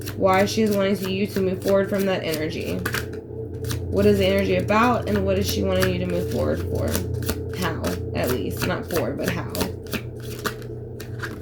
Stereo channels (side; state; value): both; identical; correlation 1.00